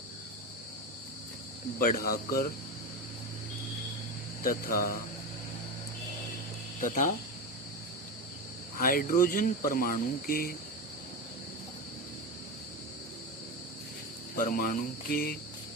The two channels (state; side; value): normal; both; correlation 0.19